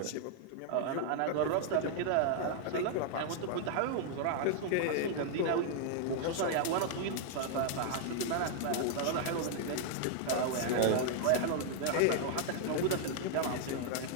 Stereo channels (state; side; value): different; both; correlation 0.00